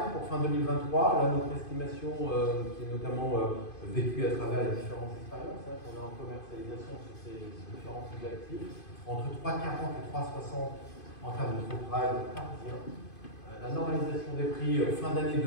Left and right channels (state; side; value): late; right; 2.5 ms